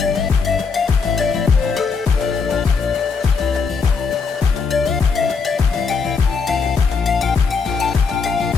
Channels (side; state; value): right; quieter; 5.1 dB